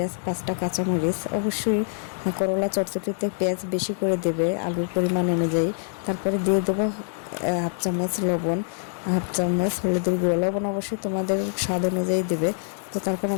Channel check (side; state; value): right; silent; digital silence